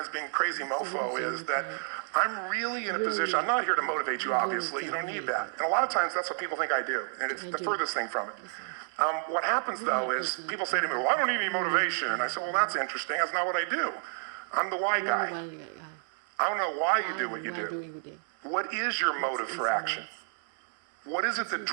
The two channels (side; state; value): left; silent; digital silence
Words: being crazy mofo, is that I'm really in a position, I'm not here to motivate you, obviously. You don't need that. And a lot of times, that's what people think I do, and it's the furthest thing from it. What happens, though, is people say to me, well, I don't need any motivation. And I say, well, that's interesting. That's not what I do. I'm the why guy. I don't know why you do what you do. What is your motive for action? What is it that